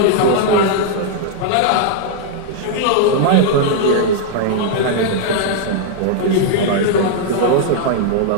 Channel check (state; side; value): different; both; correlation -0.01